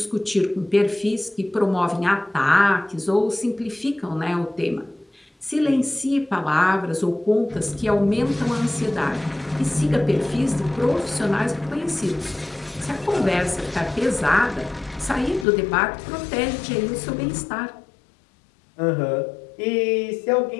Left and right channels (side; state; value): right; drops out; at 15.5 s